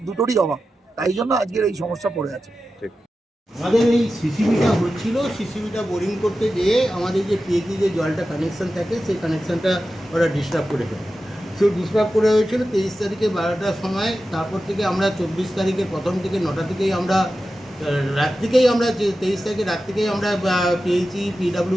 দুটোরই অভাব, তাই জন্য আজকের এই সমস্যা পড়ে আছে। আমাদের এই সিসিবিটা হচ্ছিল, সিসিবিটা বোরিং করতে গিয়ে আমাদের যে পিএইচি যে জলটা কানেকশান থাকে, সেই কানেকশানটা ওরা ডিস্টার্ব করে ফেলে। সেই ডিস্টার্ব করে হয়েছিল 23 তারিখে 12টার সময়। তারপর থেকে আমরা 24 তারিখের প্রথম থেকে 9টা থেকেই আমরা রাত থেকেই আমরা 23 তারিখে রাত থেকেই আমরা পিএইচি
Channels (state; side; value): normal; both; correlation 0.93